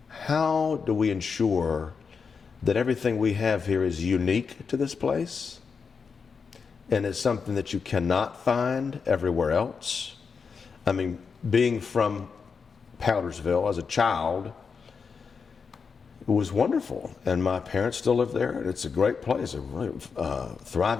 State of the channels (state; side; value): quieter; right; 5.6 dB